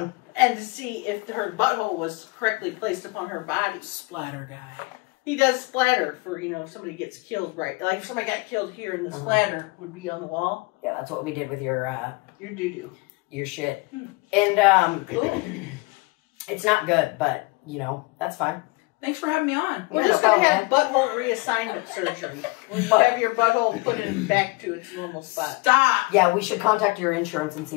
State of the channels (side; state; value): right; quieter; 25.2 dB